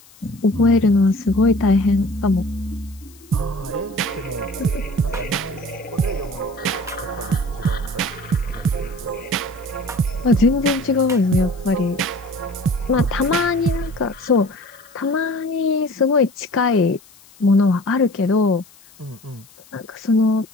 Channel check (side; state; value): left; noise; hiss, 26 dB below the sound